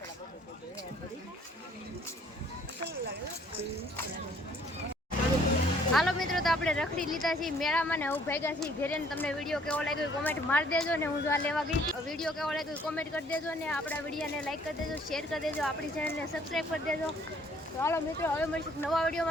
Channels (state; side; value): normal; both; correlation 0.60